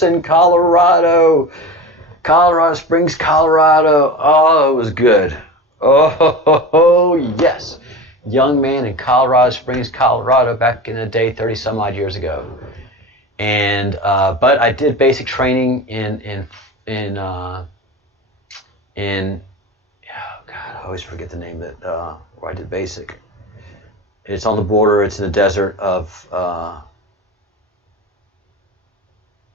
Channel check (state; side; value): normal; both; correlation 0.30